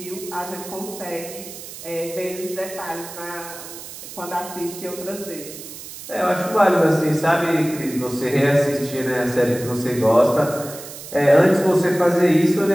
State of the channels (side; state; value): right; noise; hiss, 13 dB below the sound